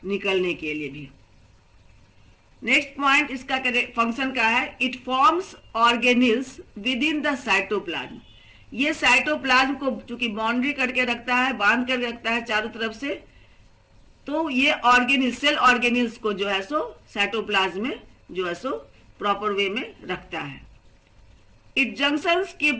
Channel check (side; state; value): both; identical; correlation 1.00